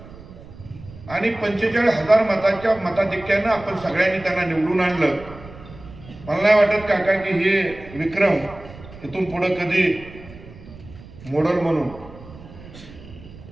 आणि 45,000 मताच्या मताधिक्यानं आपण सगळ्यांनी त्यांना निवडून आणलं. मला नाही वाटत काका की हे विक्रम इथून पुढे कधी मोडल म्हणून.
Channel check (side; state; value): right; noise; rumble, 18 dB below the sound